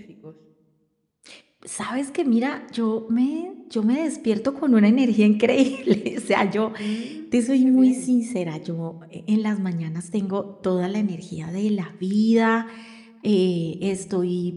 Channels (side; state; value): both; identical; correlation 1.00